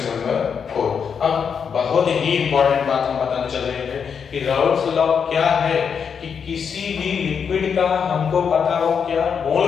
नंबर 4। अब बहुत ही इंपॉर्टेंट बात हम बताने चल रहे हैं कि राउल्ट्स लॉ क्या है कि किसी भी लिक्विड का हमको पता हो क्या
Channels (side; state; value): right; quieter; 6.7 dB